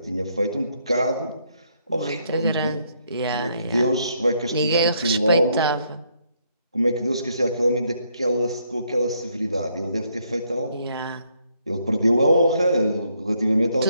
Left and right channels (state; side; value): inverted; both; correlation -0.72